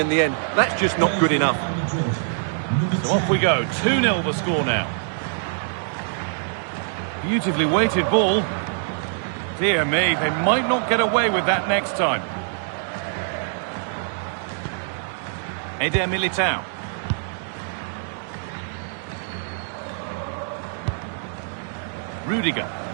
the end. That's just not good enough. So off we go. 2-0 the score now. Beautifully weighted ball. Dear me, they might not get away with that next time. Eder Militao. Rudiger.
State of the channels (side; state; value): left; silent; 59 dB below the other